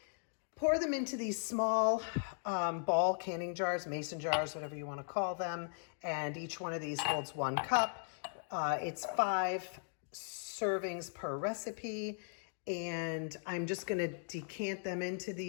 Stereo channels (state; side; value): silent; right; digital silence